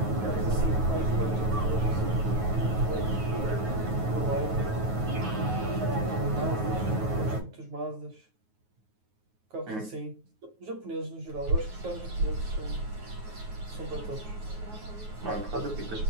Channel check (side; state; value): left; late; 9.4 ms